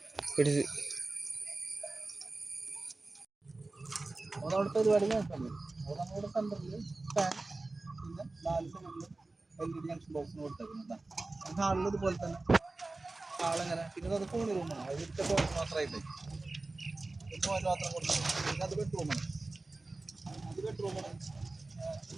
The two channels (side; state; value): left; quieter; 3.2 dB